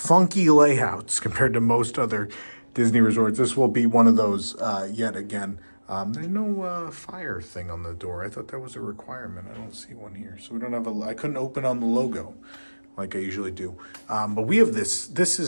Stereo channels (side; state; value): both; inverted; correlation -1.00